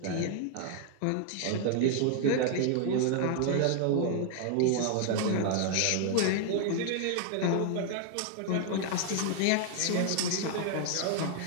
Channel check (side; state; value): both; different; correlation 0.00